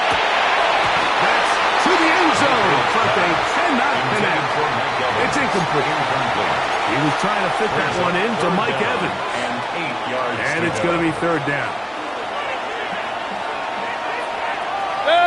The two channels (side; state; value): both; identical; correlation 1.00